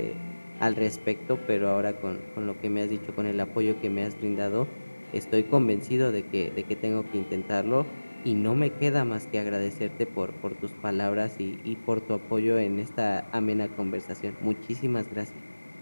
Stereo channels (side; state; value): both; inverted; correlation -1.00